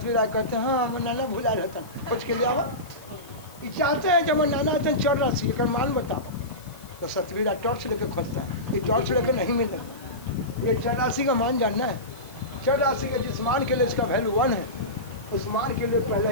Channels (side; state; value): left; noise; hiss, 22 dB below the sound